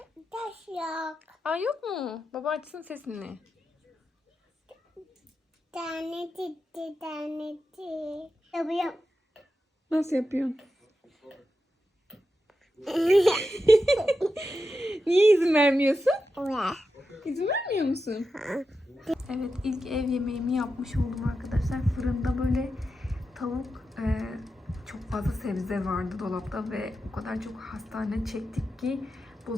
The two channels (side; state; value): both; normal; correlation 0.89